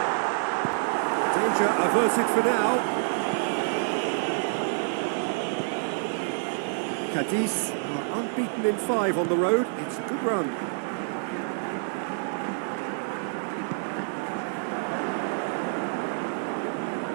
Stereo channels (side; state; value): left; silent; digital silence